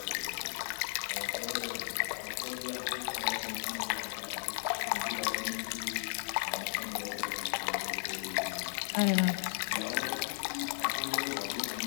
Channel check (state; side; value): silent; right; 54 dB below the other